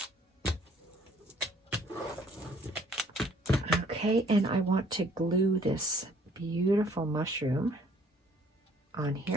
Okay, and I want to glue this beautiful mushroom on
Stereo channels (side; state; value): both; normal; correlation 0.59